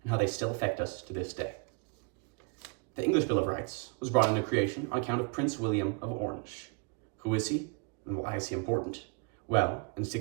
and how they still affect us to this day. The English Bill of Rights was brought into creation on account of Prince William of Orange. Who is he, and why is he important? Well, in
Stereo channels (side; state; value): left; quieter; 32.9 dB